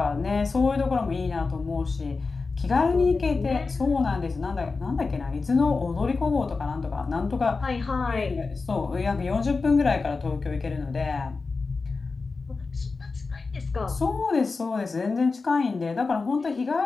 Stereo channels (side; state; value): right; quieter; 4.2 dB